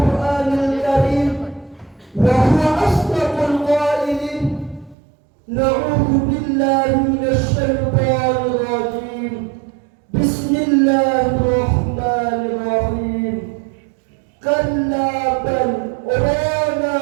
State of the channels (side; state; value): left; drops out; at 5.0 s